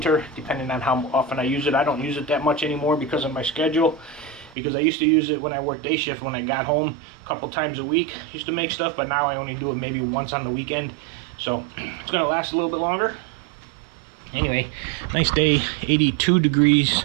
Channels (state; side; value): drops out; left; at 4.5 s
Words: depending on how often I use it. I don't use it that much anymore because of my schedule. Because I used to use it when I worked day shift, when I got home a couple times a week. Used to make stuff, but now I only do it maybe once on the weekend. So it's gonna last a little bit longer. Anyway, nice day, 82 degrees,